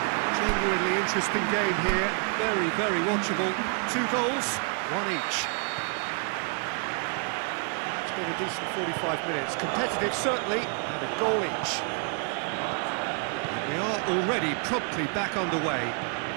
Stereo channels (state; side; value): quieter; left; 39.3 dB